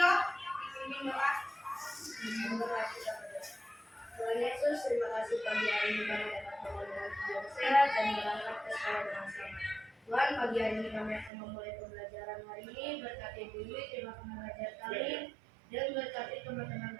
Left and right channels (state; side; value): drops out; left; at 11.3 s